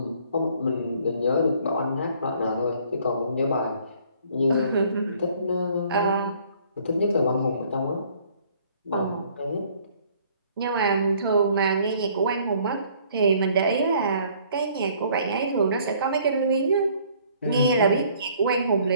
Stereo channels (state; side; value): inverted; both; correlation -0.59